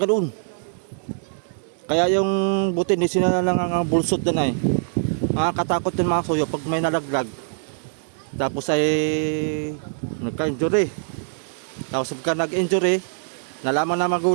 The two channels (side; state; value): left; silent; digital silence